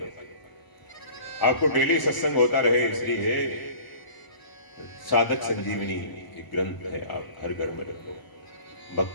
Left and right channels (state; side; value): late; right; 1.0 ms